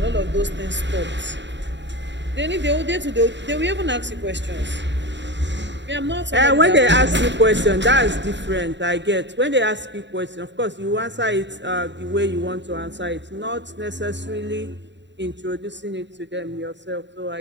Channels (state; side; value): late; left; 0.52 ms